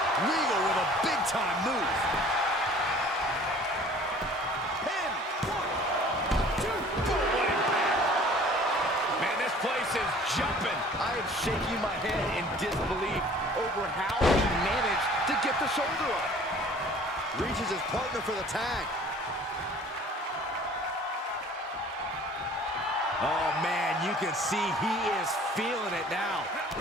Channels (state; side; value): normal; both; correlation 0.50